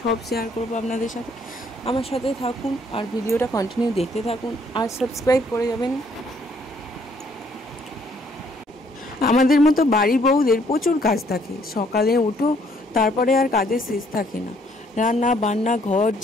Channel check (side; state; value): both; normal; correlation 0.65